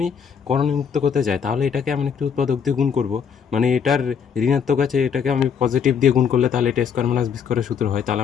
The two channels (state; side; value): quieter; right; 7.0 dB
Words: করণীমুক্ত করতে চাই, তাহলে এটাকে আমি একটি উৎপাদক দিয়ে গুণ করব। মানে এটার ঋণাত্মক আছে, এটাকে আমি পজিটিভ দিয়ে গুণ করলে তাহলে এটা স্কোয়ার মাইনাস বি স্কোয়ারের সূত্র হয়। তাহলে